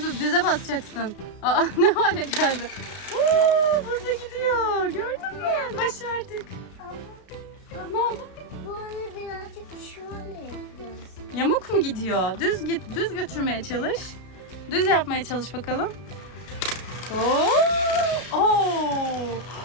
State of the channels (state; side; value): late; right; 33 ms